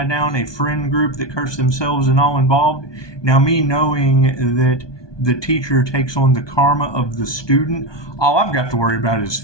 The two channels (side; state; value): right; late; 1.2 ms